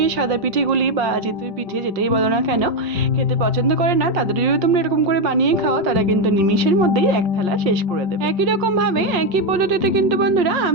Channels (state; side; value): late; left; 5.6 ms